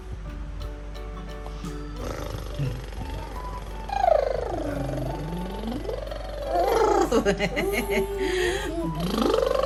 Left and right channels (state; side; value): identical; both; correlation 1.00